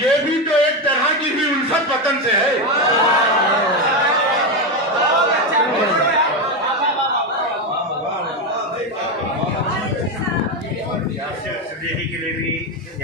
یہ بھی تو ایک طرح کی بھی الفت وطن سے ہے۔ صدیقی کے لیے بھی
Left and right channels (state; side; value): normal; both; correlation 0.11